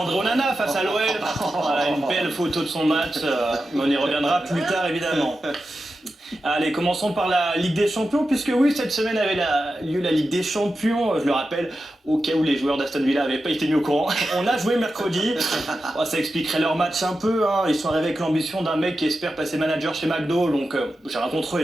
Onana face à l'OL. Voilà, une belle photo de son match. Mais on y reviendra plus tard, évidemment. Allez, commençons par la Ligue des Champions, puisque oui, cette semaine avait lieu la Ligue des Champions, je le rappelle, au cas où les joueurs d'Aston Villa n'avaient pas été mis au courant. On a joué mercredi, ça expliquerait leur match un peu, hein. Ils sont arrivés avec l'ambition d'un mec qui espère passer manager chez McDo, donc j'ai rien contre eux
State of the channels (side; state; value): both; normal; correlation 0.91